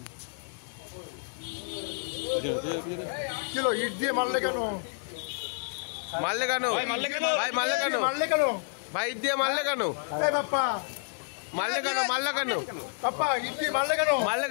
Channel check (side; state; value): right; silent; 58 dB below the other